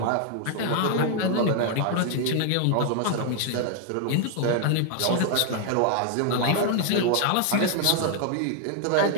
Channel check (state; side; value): different; both; correlation 0.00